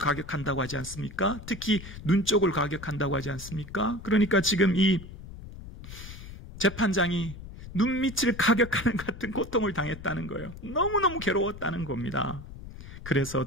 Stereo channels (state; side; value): noise; left; rumble, 13 dB below the sound